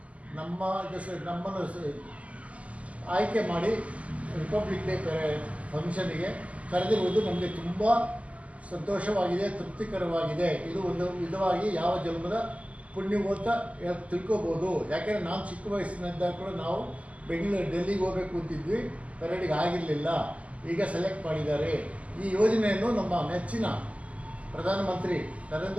ನಮ್ಮನ್ನು ಆಯ್ಕೆ ಮಾಡಿ ರಿಪಬ್ಲಿಕ್ ಡೇ ಫಂಕ್ಷನಿಗೆ ಕರೆದಿರುವುದು ನಮಗೆ ತುಂಬ ಸಂತೋಷವಾಗಿದೆ, ತೃಪ್ತಿಕರವಾಗಿದೆ. ಇದು ಒಂದು ವಿಧವಾಗಿ ಯಾವ ಜನ್ಮದ ಪುಣ್ಯವು ಅಂತ ತಿಳ್ಕೊಬೋದು. ಯಾಕೆಂದರೆ ನಾನು ಚಿಕ್ಕ ವಯಸ್ಸಿನಿಂದ ಕೂಡ ನಾವು ಡೆಲ್ಲಿಗೆ ಹೋಗಬೇಕು ಅಂತಿದ್ವಿ, ಪೆರೇಡಿಗೆ ಆಗಿರಲಿಲ್ಲ. ಈಗ ಸೆಲೆಕ್ಟ್ ಮಾಡಿದ್ದಾರೆ. ಈ ಯೋಜನೆಯನ್ನು ನಮ್ಮ ನೆಚ್ಚಿನ ಪ್ರಧಾನಮಂತ್ರಿ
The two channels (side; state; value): left; late; 0.066 ms